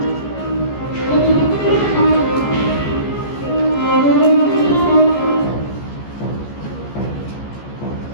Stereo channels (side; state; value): right; late; 14 ms